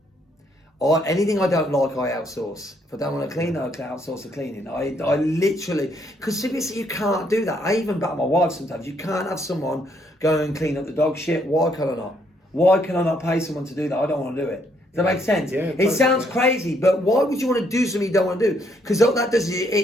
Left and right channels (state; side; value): normal; both; correlation 0.71